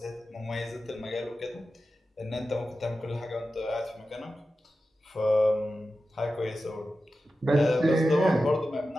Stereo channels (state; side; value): normal; both; correlation 0.93